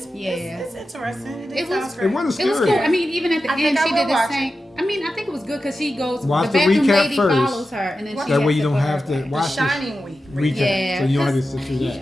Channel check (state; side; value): normal; both; correlation 0.92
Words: interesting. It wasn't scary. It was cool. I mean, even at the end, she did the same. I mean, I think it was good because she goes. Watch the bathroom lady first. Follows her, and then that way you don't have to watch the Shining Week recap. Yeah, so you don't have to sit through